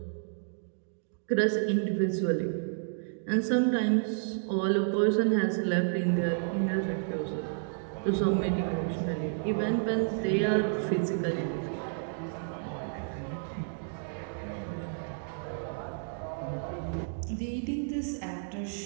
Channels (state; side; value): silent; left; digital silence